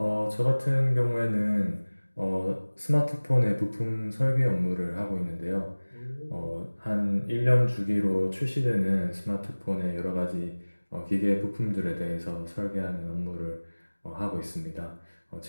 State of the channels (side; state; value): both; inverted; correlation -1.00